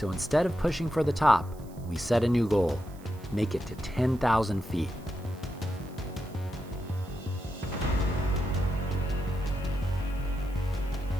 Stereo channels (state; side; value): noise; right; hiss, 25 dB below the sound